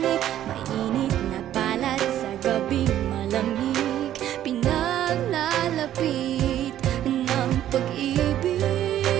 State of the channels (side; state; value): left; quieter; 11.9 dB